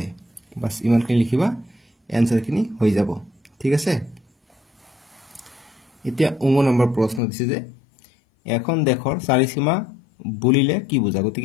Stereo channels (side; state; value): right; drops out; at 7.2 s